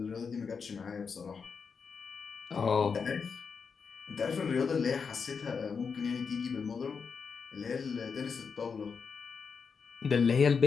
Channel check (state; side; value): quieter; right; 5.7 dB